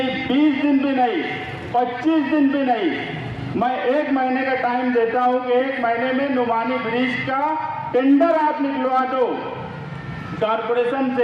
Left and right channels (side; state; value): both; identical; correlation 1.00